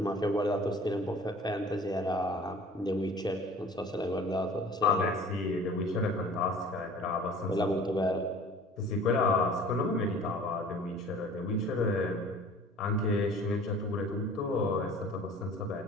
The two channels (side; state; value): both; normal; correlation 0.46